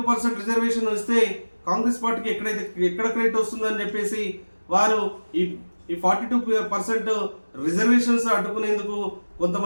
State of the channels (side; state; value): both; inverted; correlation -1.00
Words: రిజర్వేషన్ ఇస్తే కాంగ్రెస్ పార్టీకి ఎక్కడ క్రెడిట్ వస్తుందని చెప్పేసి వారు ఈ 42% రిజర్వేషన్స్ అడ్డుకునేందుకు